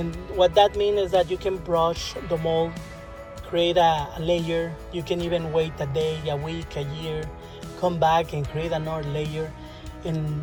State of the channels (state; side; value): identical; both; correlation 1.00